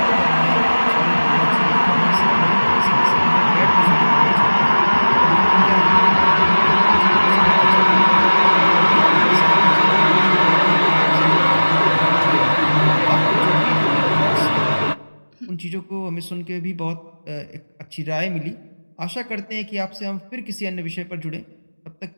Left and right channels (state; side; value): inverted; both; correlation -1.00